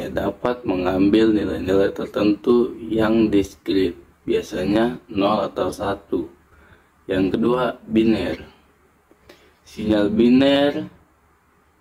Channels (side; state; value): both; identical; correlation 1.00